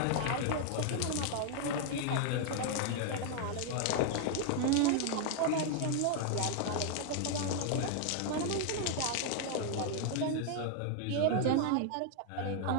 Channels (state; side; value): different; both; correlation 0.00